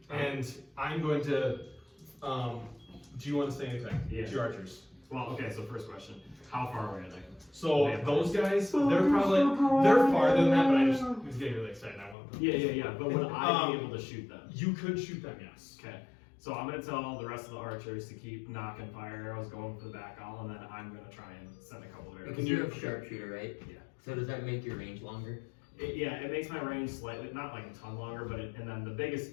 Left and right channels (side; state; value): right; drops out; at 12.2 s